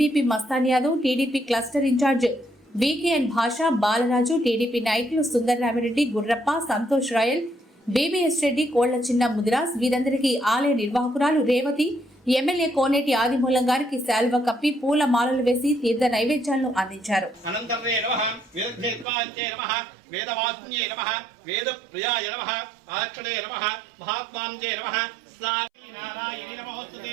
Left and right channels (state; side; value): drops out; left; at 19.1 s